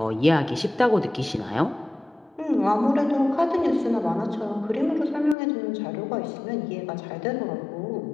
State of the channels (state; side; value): drops out; right; at 5.4 s